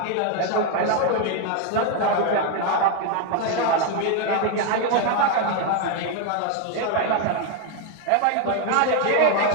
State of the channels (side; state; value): both; different; correlation 0.01